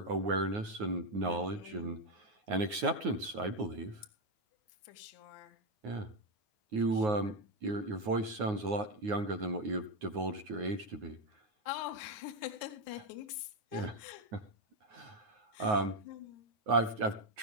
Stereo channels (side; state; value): left; late; 9.5 ms